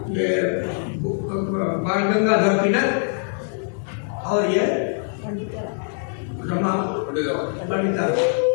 बाल गंगाधर तिलक और ये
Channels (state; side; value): silent; right; digital silence